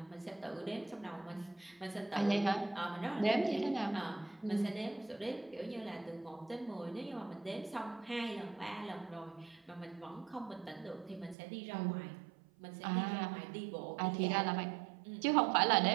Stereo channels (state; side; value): drops out; left; at 11.4 s